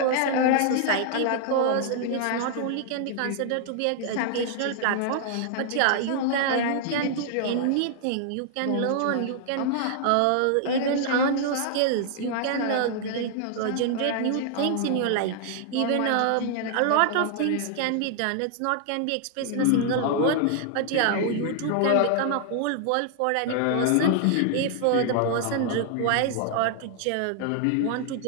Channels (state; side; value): different; both; correlation -0.01